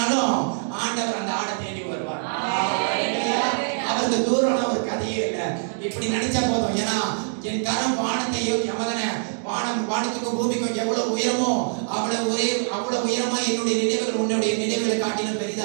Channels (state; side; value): silent; left; digital silence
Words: ஆண்டவர் அந்த ஆடை தேடி வருவார். அவருக்கு தூரம்னா ஒரு கதையே இல்லை. இப்படி நினைச்சா போதும். ஏன்னா என் கரம் வானத்தையும் வானத்துக்கும் பூமிக்கும் எவ்வளவு உயரமோ அவ்வளவு உயரமா என்னுடைய நினைவுகள் உன்னுடைய நினைவுகளை காட்டிலும்